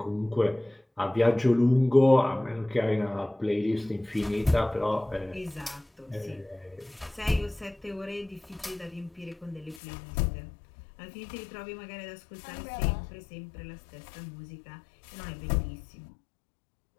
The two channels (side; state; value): right; drops out; at 9.8 s